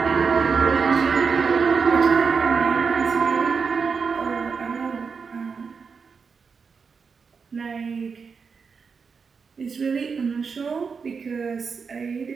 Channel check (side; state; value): left; quieter; 5.5 dB